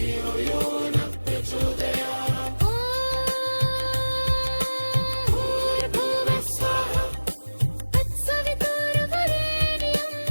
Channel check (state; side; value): inverted; both; correlation -1.00